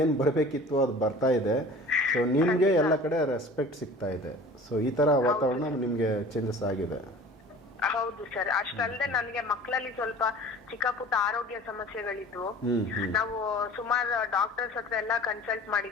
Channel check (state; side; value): normal; both; correlation 0.43